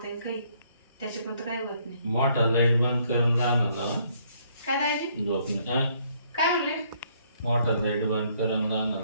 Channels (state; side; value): inverted; both; correlation -0.66